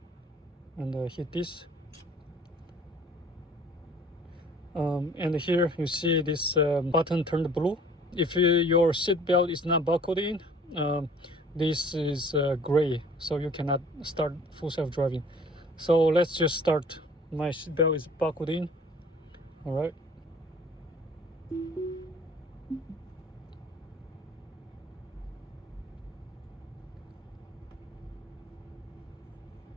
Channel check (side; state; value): both; normal; correlation 0.51